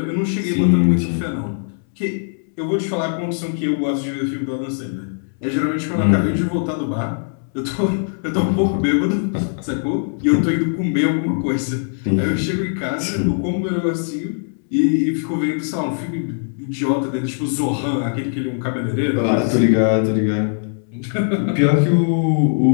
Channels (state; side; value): silent; right; 66 dB below the other